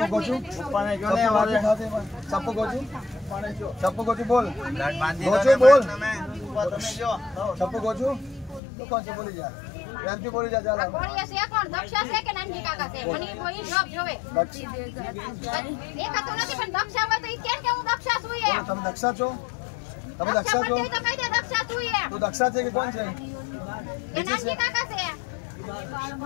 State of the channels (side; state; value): right; drops out; at 8.6 s